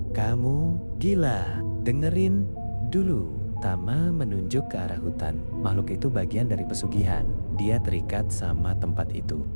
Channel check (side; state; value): both; inverted; correlation -1.00